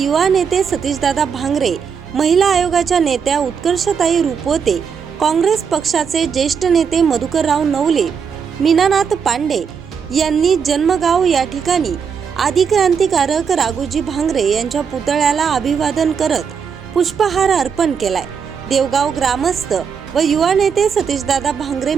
नेते सतीशदादा भांगरे, महिला आयोगाच्या नेत्या उत्कर्षताई रुपवते, काँग्रेस पक्षाचे ज्येष्ठ नेते मधुकरराव नवले, मीनानाथ पांडे यांनी जन्मगाव या ठिकाणी आदिक्रांतिकारक राघोजी भांगरे यांच्या पुतळ्याला अभिवादन करत पुष्पहार अर्पण केलाय। देवगाव ग्रामस्थ व युवा नेते सतीशदादा भांगरे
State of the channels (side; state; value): left; quieter; 6.6 dB